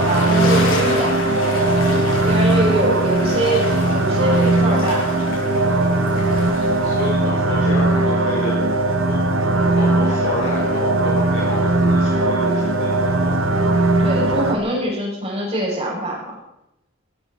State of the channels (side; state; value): both; normal; correlation 0.37